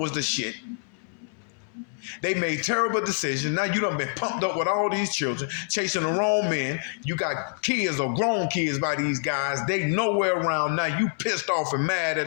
the shit. They made terrible decisions. Now you done been pumped up with all these children, chasing the wrong men. You got kids or grown kids by these guys. They nowhere around. Now you pissed off and mad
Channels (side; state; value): right; silent; 61 dB below the other